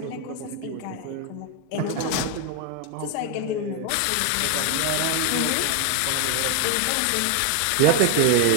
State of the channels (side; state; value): both; different; correlation 0.01